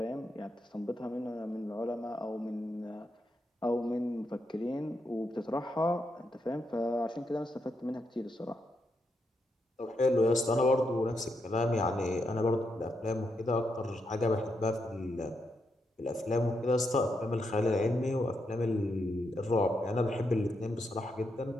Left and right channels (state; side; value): normal; both; correlation 0.82